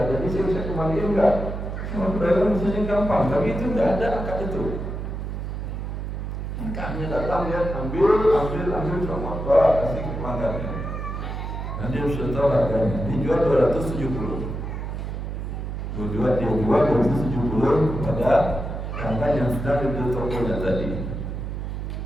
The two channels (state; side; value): noise; right; hum, 5 dB below the sound